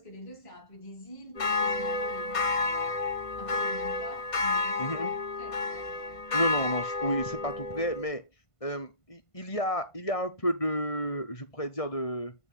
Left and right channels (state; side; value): late; right; 1.5 ms